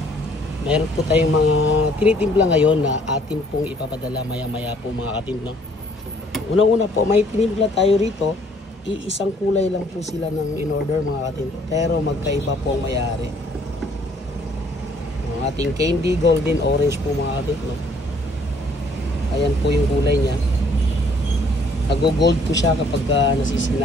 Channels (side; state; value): both; normal; correlation 0.61